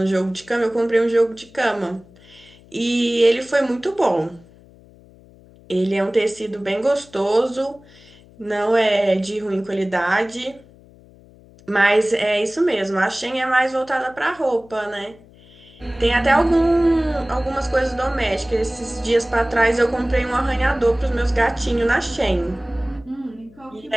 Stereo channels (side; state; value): left; noise; hum, 25 dB below the sound